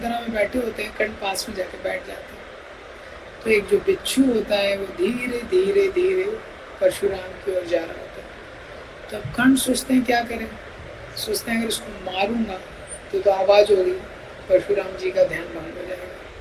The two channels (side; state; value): both; identical; correlation 1.00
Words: में बैठे होते हैं, कर्ण पास में जाके बैठ जाते हैं। तो एक जो बिच्छू होता है वो धीरे धीरे धीरे परशुराम की ओर जा रहा होता है। तो अब कर्ण सोचते हैं क्या करें, सोचते हैं अगर इसको मारूंगा तो आवाज़ होगी, परशुराम जी का ध्यान भंग हो